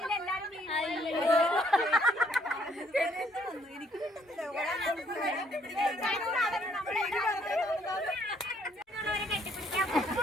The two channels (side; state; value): both; normal; correlation 0.66